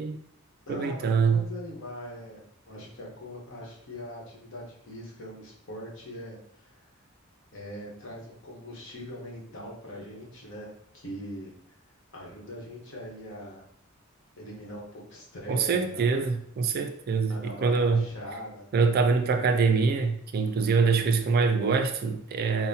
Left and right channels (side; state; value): left; quieter; 4.3 dB